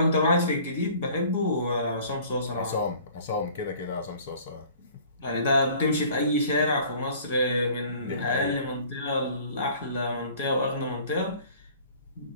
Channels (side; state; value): both; inverted; correlation -0.50